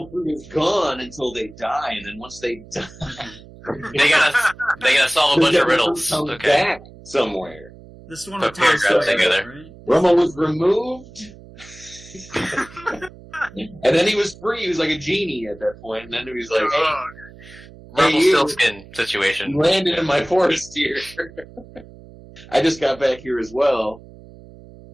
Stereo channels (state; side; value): noise; right; hum, 20 dB below the sound